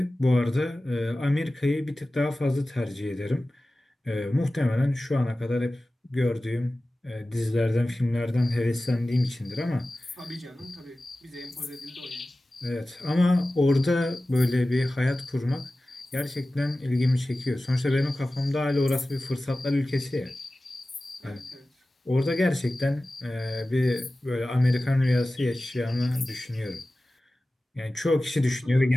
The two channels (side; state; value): both; normal; correlation 0.96